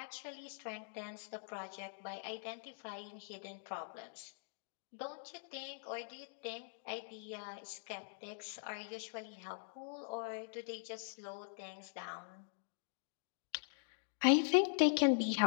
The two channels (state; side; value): silent; right; digital silence